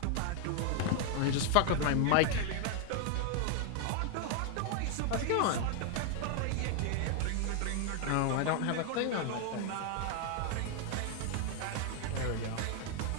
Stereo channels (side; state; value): both; different; correlation 0.00